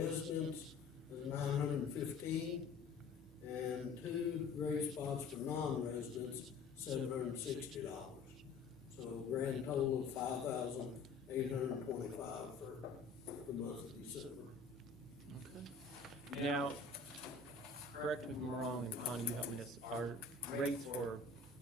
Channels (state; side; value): quieter; right; 4.3 dB